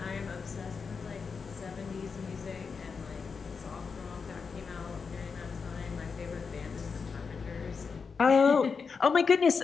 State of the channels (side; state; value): right; quieter; 5.4 dB